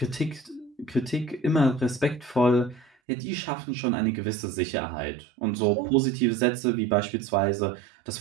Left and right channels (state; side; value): drops out; left; at 2.9 s